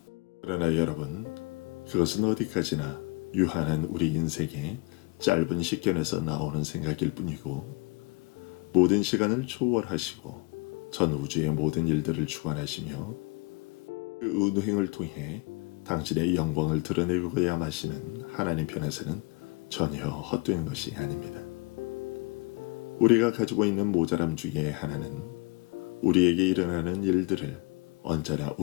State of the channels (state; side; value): quieter; right; 27.3 dB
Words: 그러나 여러분, 그것은 어디까지나 유한한 우리 인생의 짧은 식견에서 나오는 생각일 뿐이고 모든 시간을 초월하시고 전 우주의 모든 일들을 주관하시며 그 운행을 통해 당신의 영광을 드러내고야 마시는 하나님 편에서는 전혀 헛된 것이 아닙니다. 우리가 가지고 있는 모자람 중에 하나는 우리에게 일어나는 일들을 언제나